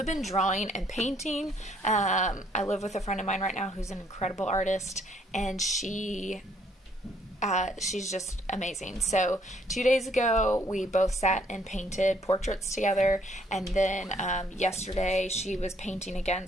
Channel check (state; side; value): normal; both; correlation 0.66